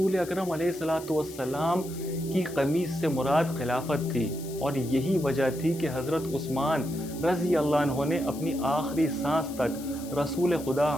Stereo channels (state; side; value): noise; left; hiss, 16 dB below the sound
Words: اکرم علیہ السلام کی قمیص سے مراد خلافت تھی، اور یہی وجہ تھی کہ حضرت عثمان رضی اللہ عنہ نے اپنی آخری سانس تک رسول خدا